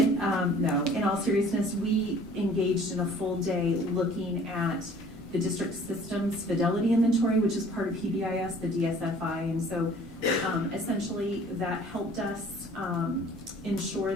in all seriousness, we engaged in a full day looking at the district systems fidelity inventory, which is part of PBIS, the DSFI, and so essentially that helped us ensure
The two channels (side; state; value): both; normal; correlation 0.52